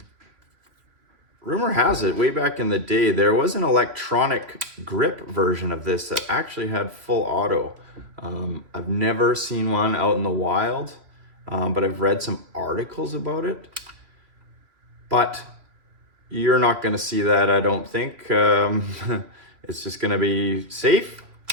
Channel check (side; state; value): left; late; 3.2 ms